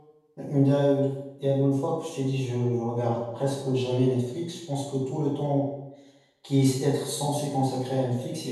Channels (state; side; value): identical; both; correlation 1.00